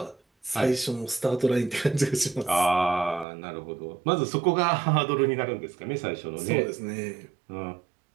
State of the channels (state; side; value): drops out; left; at 3.2 s